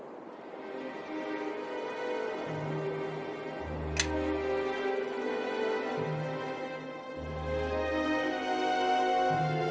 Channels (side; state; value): both; identical; correlation 1.00